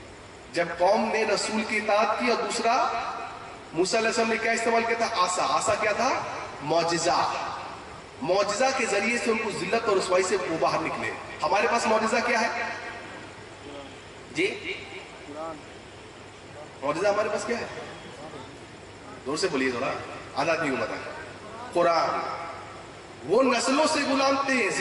جب قوم نے رسول کی اطاعت کی، اور دوسرا موسیٰ علیہ السلام نے کیا استعمال کیا تھا؟ عصا۔ عصا کیا تھا؟ معجزہ۔ معجزہ کے ذریعے سے ان کو ذلت اور رسوائی سے وہ باہر نکلے۔ ہمارے پاس معجزہ کیا ہے جی؟ معجزہ ہمارے پاس کیا ہے؟ زور سے بولیے ذرا، آدھا آدمی کو بتا۔ قرآن۔ وہ نسلوں سے غلام تھے،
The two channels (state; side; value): identical; both; correlation 1.00